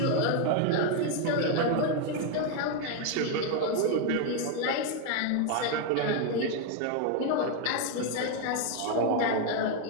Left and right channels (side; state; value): both; different; correlation 0.01